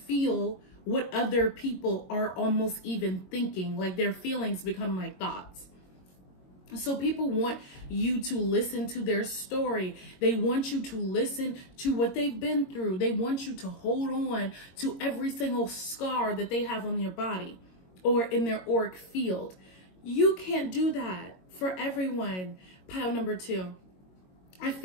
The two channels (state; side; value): late; right; 22 ms